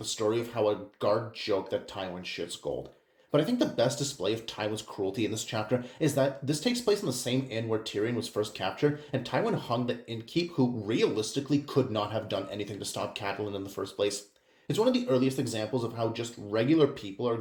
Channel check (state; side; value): identical; both; correlation 1.00